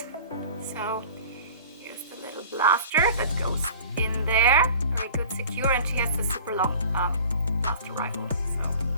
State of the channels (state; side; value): inverted; both; correlation -0.43